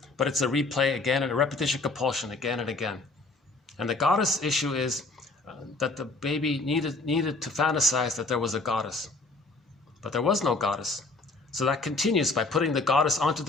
but it's a replay again and a repetition compulsion again and again. And the goddess issue is that the baby needed to fantasize that there was a goddess. But there was no goddess. So that continues by putting the goddess onto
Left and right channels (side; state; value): right; quieter; 3.3 dB